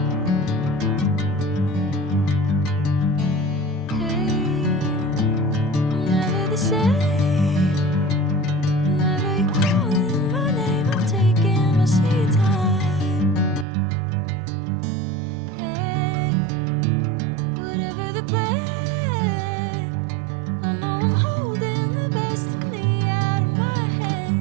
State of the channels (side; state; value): left; drops out; at 13.7 s